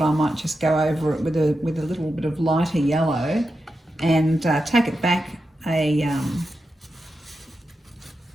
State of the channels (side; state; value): both; normal; correlation 0.89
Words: I might just go over it with a little bit of lighter yellow and take it back a